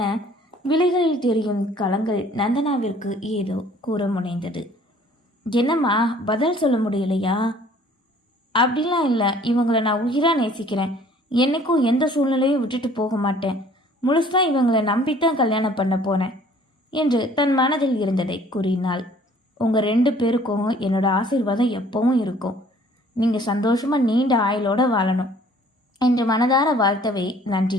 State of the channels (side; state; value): both; normal; correlation 0.55